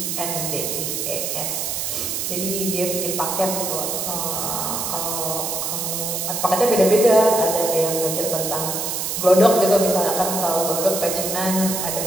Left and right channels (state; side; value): noise; right; hiss, 2 dB below the sound